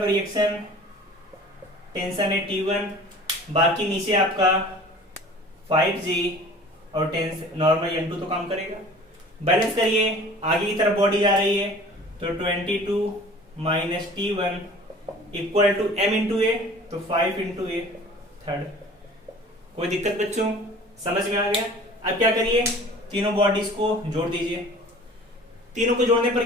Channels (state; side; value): normal; both; correlation 0.45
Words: रिएक्शन टेंशन है T1, बाकी नीचे आपका 5g और टेंशन नॉर्मल N2 तो काम करेगा। बैलेंस करिए, आगे की तरफ बॉडी जा रही है, तो 22 minus T1 equal to m into a, तो 5 इंटू ए थर्ड। कोई दिक्कत बच्चों, समझ में आ गया। अब क्या करिए, तीनों बॉडीज को जोड़ दीजिए, तीनों को जोड़ने